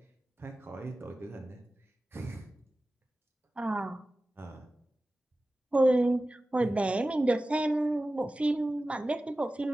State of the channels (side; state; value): both; normal; correlation 0.96